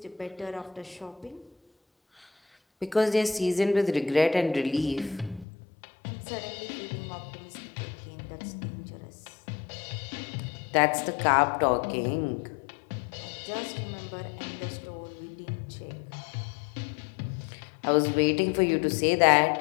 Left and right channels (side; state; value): right; drops out; at 5.5 s